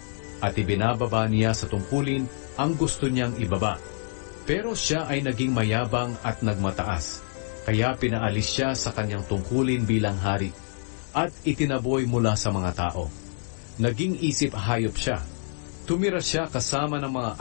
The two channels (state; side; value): silent; right; digital silence